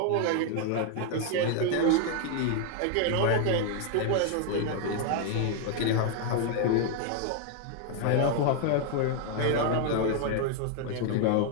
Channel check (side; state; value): both; different; correlation 0.00